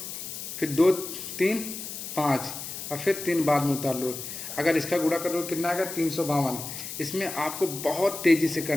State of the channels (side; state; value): left; noise; hiss, 8 dB below the sound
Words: फिर 2 3 5 और फिर 3 बाद में उतार लो। अगर इसका गुणा करो कितना आएगा 352। इसमें आपको बहुत तेज़ी से